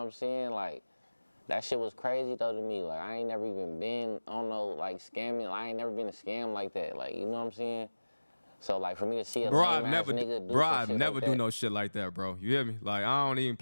saying? Like, that shit was crazy though to me. Like, I ain't never even been on no, like, scamming. I ain't never been a scam like that. Like, you know what I'm saying? So, like, for me to see a lame-ass nigga do some shit never like do that. no shit like that, bro. You hear me? Like, I don't even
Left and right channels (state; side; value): inverted; both; correlation -1.00